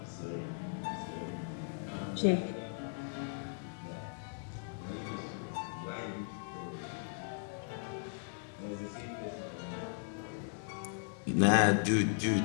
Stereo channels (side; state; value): right; silent; 53 dB below the other